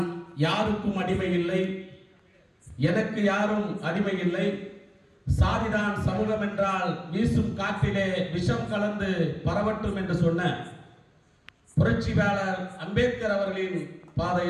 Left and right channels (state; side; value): identical; both; correlation 1.00